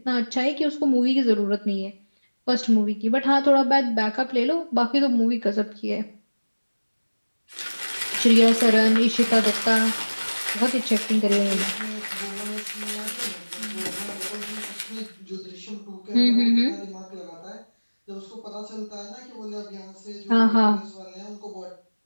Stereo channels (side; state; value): both; inverted; correlation -1.00